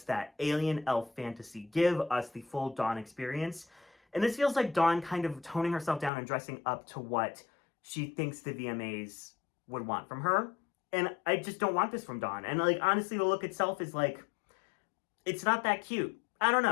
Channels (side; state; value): right; drops out; at 6.1 s